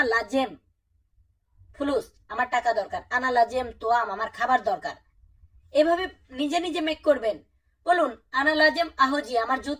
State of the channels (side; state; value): both; identical; correlation 1.00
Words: লাজেম ফুলুস আমার টাকা দরকার, আনা লাজেম তোয়াম আমার খাবার দরকার। এভাবে নিজে নিজে মেক করবেন। বলুন আনা লাজেম আহজি আমার